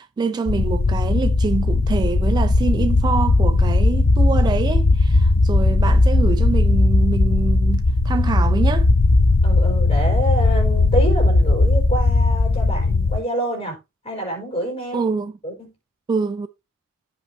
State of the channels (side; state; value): both; normal; correlation 0.83